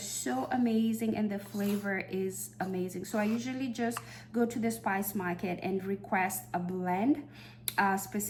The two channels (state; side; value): identical; both; correlation 1.00